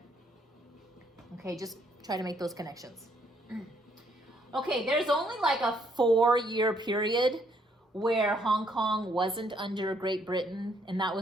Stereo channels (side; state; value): both; normal; correlation 0.69